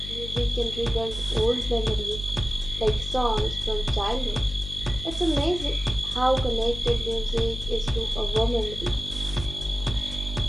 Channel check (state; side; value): noise; left; hum, 9 dB below the sound